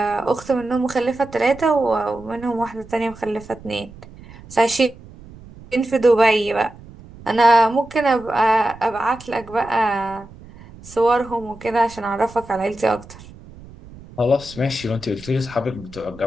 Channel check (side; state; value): right; noise; rumble, 19 dB below the sound